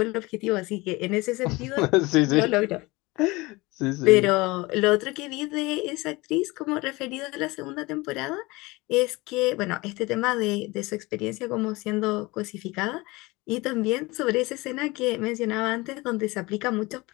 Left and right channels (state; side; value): quieter; right; 22.6 dB